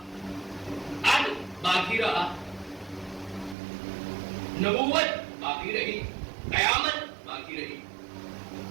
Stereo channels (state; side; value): drops out; left; at 3.6 s